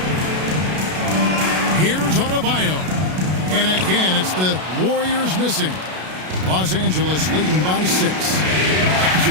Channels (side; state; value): left; late; 32 ms